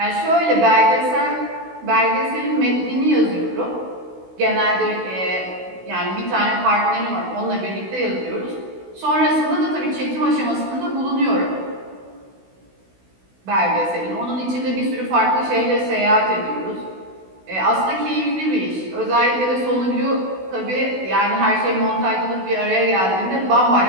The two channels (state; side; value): late; left; 16 ms